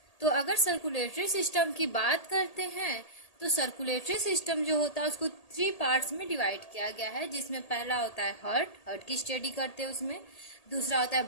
तो अगर सर्कुलेटरी सिस्टम की बात करते हैं तो सर्कुलेटरी सिस्टम जो होता है उसको 3 पार्ट्स में डिवाइड किया गया है, जिसमें पहला होता है हार्ट की स्टडी करते हैं उसमें। दूसरा होता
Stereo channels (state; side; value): late; right; 1.8 ms